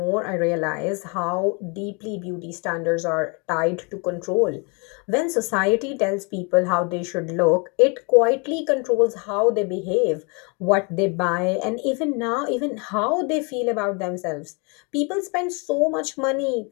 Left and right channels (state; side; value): quieter; right; 33.3 dB